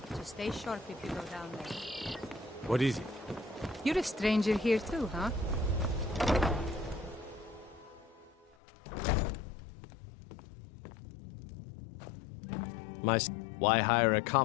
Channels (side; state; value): right; drops out; at 8.6 s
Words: stay sharp if you go down there. What is it? You're a stranger here too, huh? Why hire a